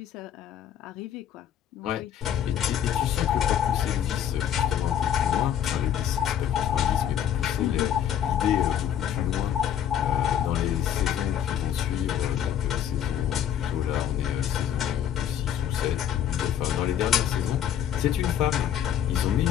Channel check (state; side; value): quieter; right; 9.9 dB